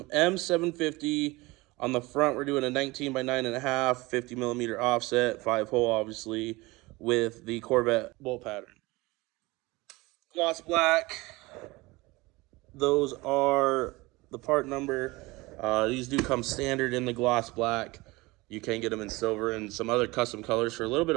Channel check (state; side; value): quieter; left; 22.2 dB